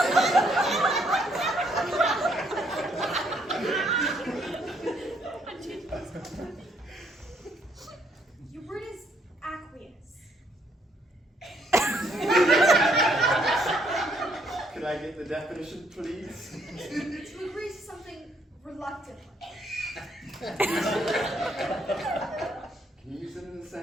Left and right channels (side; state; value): both; normal; correlation 0.69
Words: Your word is aqueous. Could I get the definition, please? To agree to something reluctantly. Can you use it in a